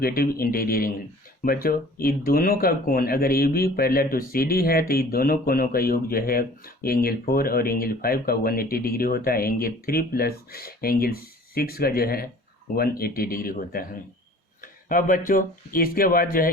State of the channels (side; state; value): both; normal; correlation 0.48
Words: इंटीरियर एंगल। बच्चों ये दोनों का कोण अगर A B parallel to C D है तो ये दोनों कोणों का योग जो है एंगल 4 और एंगल 5 का 180 डिग्री होता है। एंगल 3 प्लस एंगल 6 का जो है 180 डिग्री होता है। अब बच्चों इसके बाद जो है